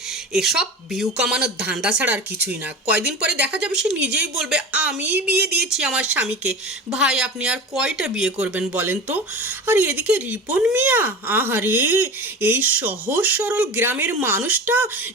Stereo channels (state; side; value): normal; both; correlation 0.31